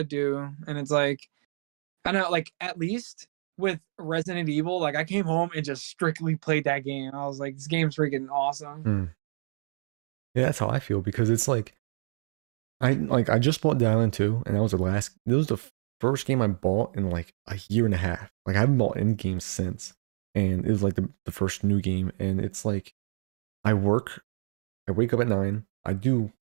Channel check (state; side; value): silent; left; digital silence